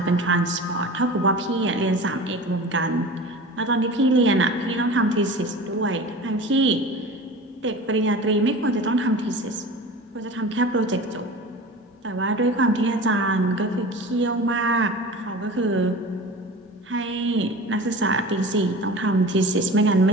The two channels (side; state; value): both; normal; correlation 0.36